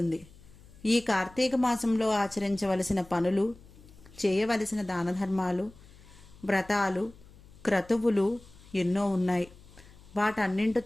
ఈ కార్తీక మాసంలో ఆచరించవలసిన పనులు, చేయవలసిన దానధర్మాలు, వ్రతాలు, క్రతువులు ఎన్నో ఉన్నాయి.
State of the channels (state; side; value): noise; left; hum, 23 dB below the sound